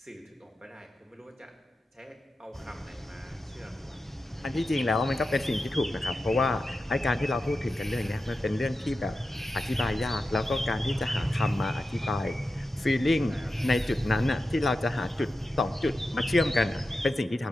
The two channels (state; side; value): normal; both; correlation 0.91